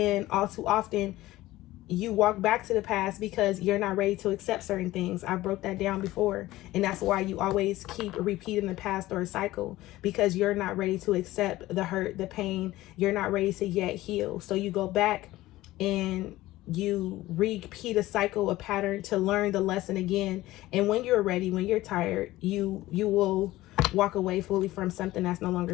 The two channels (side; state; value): right; quieter; 16.9 dB